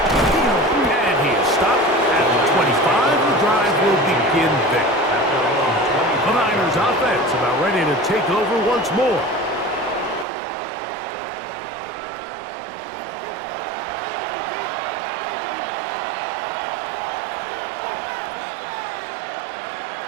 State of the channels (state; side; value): drops out; left; at 10.2 s